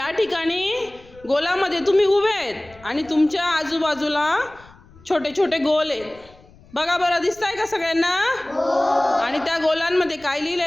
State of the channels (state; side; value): noise; left; rumble, 25 dB below the sound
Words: ठिकाणी गोलामध्ये तुम्ही उभे आहेत आणि तुमच्या आजूबाजूला छोटे छोटे गोल आहेत. बघा बरं, दिसतंय का सगळ्यांना? आणि त्या गोलांमध्ये काय